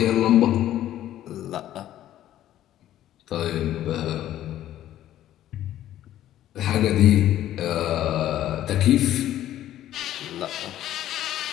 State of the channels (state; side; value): quieter; right; 12.7 dB